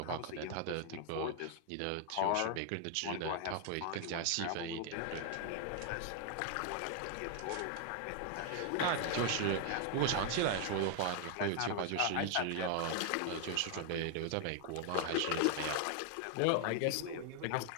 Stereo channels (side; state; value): both; different; correlation 0.00